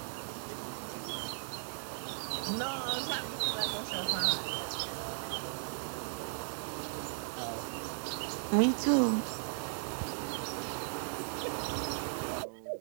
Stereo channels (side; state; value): left; silent; digital silence